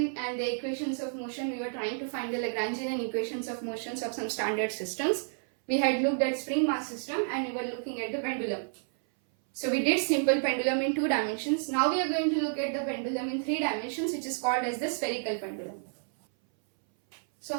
and the equations of motion. We were trying to find the Lagrangian and equations of motions of some standard systems. We had looked at spring mass system and we were looking at the pendulum. So we did simple pendulum in 2 dimensions. Now we are going to look at the pendulum in 3 dimensions, which is called as the spherical pendulum. So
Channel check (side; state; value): left; silent; 58 dB below the other